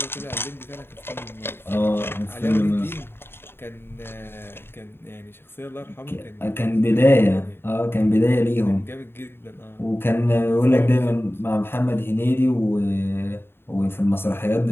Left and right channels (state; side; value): late; right; 0.11 ms